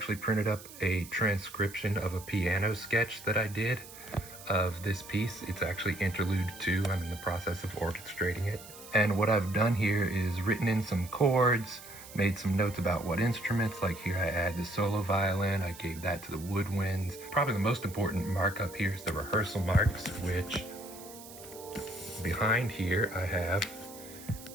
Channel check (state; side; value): noise; right; hiss, 16 dB below the sound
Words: printed up a transcription of a piano sketch that I did of this piece. It's actually Interlude II. I'm in the process of orchestrating it. And what I've done here is written in some chords, made some notes about what instruments, like here I add the solo violin, I gave that to the woodwinds. Probably the most important markup here is the rehearsal marks, which behind here I have